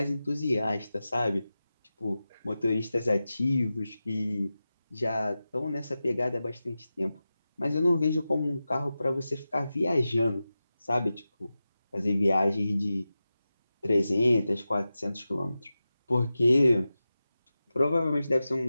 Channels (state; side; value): inverted; both; correlation -0.94